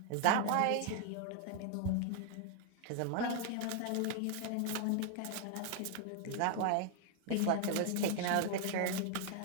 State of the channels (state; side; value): different; both; correlation 0.00